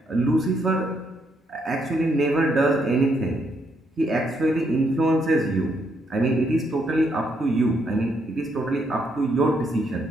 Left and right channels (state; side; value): normal; both; correlation 0.75